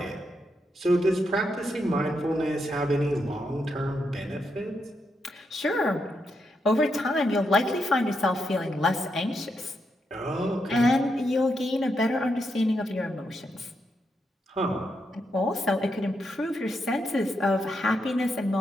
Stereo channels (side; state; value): both; normal; correlation 0.82